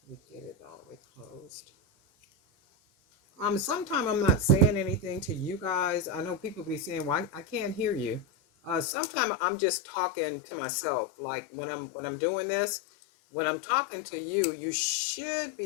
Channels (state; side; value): drops out; right; at 8.8 s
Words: we get it all the way closed. Sometimes I'm not saying anything to you guys. I know people be saying, "Well, I can't hear you." Sometimes I'm just talking to myself. Like when I'm doing this, when I'm talking to you, you should